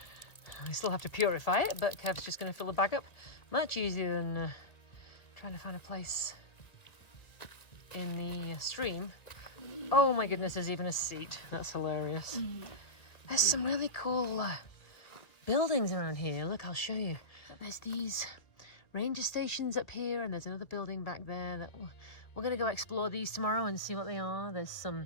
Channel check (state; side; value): late; right; 2.1 ms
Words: We still have to purify it, but Kev's just going to fill the bag up. Much easier than trying to find a place in the stream. Oh my goodness, there's even a seat. That's hilarious. There's some really cool buildings around here. Look, I'll show you. There's these ranger stations up here, and there's another building back there that we're going to go explore these tomorrow and see what they are. There's